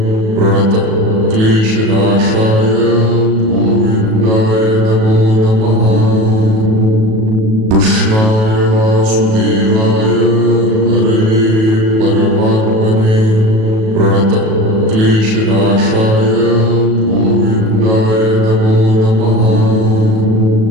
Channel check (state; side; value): late; left; 37 ms